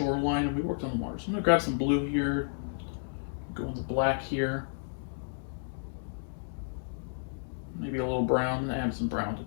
and we worked on the water. So I'm going to grab some blue here, go in the black here, maybe a little brown, and add some brown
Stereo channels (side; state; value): right; silent; digital silence